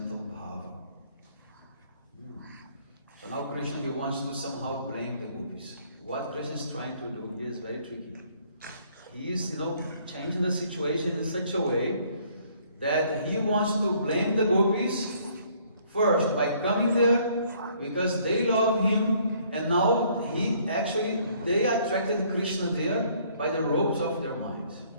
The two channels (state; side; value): inverted; both; correlation -0.62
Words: bhava?" So now Krishna, he wants to somehow blame the gopis. What Krishna is trying to do here is very tricky. He is, changing the situation in such a way that he wants to blame the gopis first by coming there because they love him, and now they attracted Krishna there by the ropes of their minds.